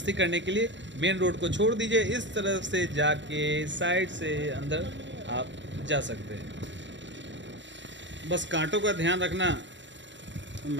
करने के लिए मेन रोड को छोड़ दीजिए, इस तरफ से जाके साइड से अंदर आप जा सकते हैं। बस कांटों का ध्यान रखना।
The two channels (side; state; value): left; late; 0.53 ms